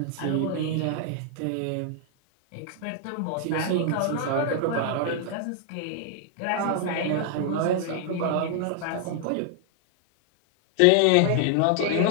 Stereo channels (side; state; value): both; different; correlation 0.00